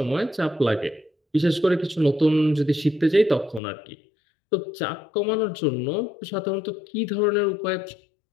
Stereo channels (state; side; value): drops out; right; at 3.6 s